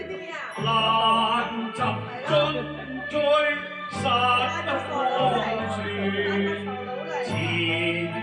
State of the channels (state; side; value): identical; both; correlation 1.00